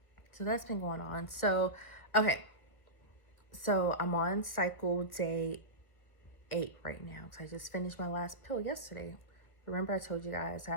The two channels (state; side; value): late; right; 1.5 ms